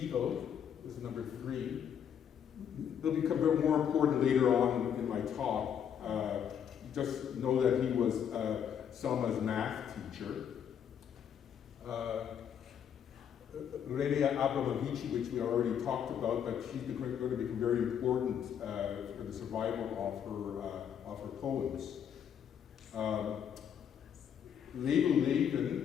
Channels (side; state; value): right; quieter; 8.5 dB